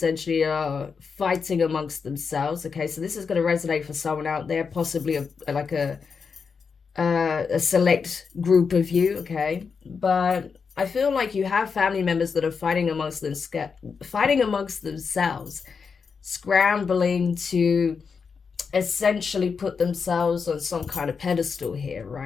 are fighting amongst themselves. Okay, so this is going to resonate for someone out there, possibly a select group of you. Okay, but I feel like you have family members that are fighting amongst themselves, scrambling to essentially put themselves on some kind of pedestal here,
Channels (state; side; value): quieter; right; 5.6 dB